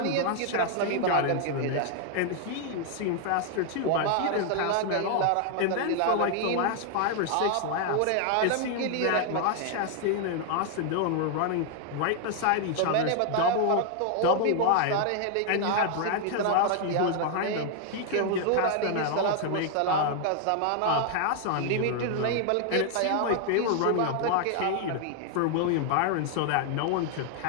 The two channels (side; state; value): both; different; correlation 0.00